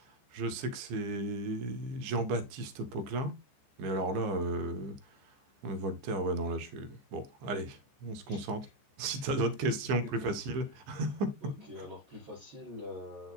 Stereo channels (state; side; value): late; left; 15 ms